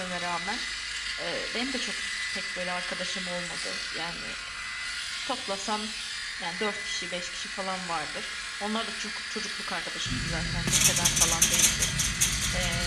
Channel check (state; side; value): identical; both; correlation 1.00